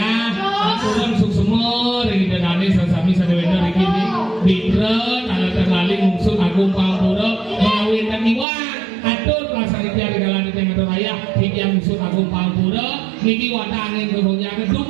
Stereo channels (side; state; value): left; drops out; at 8.5 s